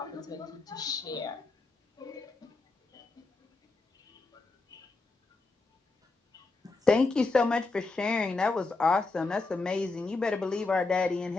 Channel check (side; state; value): right; quieter; 3.5 dB